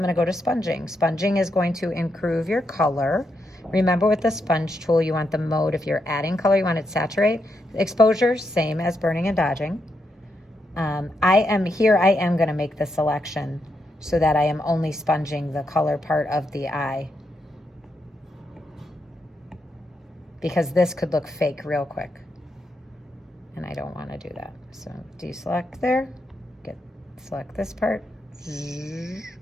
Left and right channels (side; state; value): both; normal; correlation 0.82